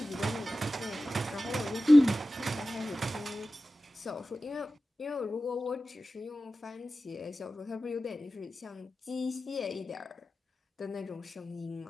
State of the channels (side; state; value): both; normal; correlation 0.95